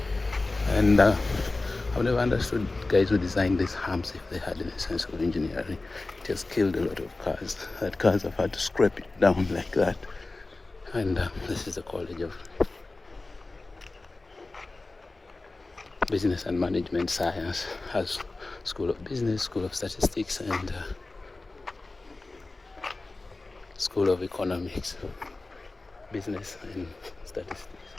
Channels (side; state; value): right; quieter; 3.3 dB